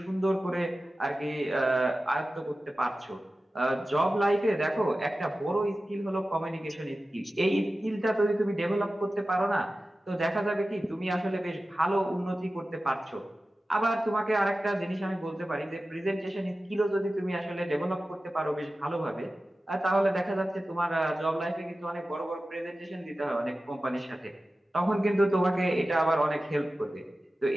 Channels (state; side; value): normal; both; correlation 0.95